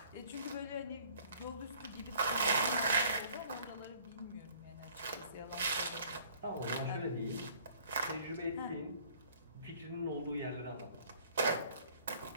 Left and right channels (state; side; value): inverted; both; correlation -0.55